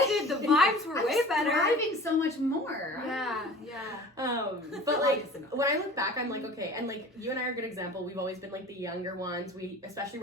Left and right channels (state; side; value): normal; both; correlation 0.42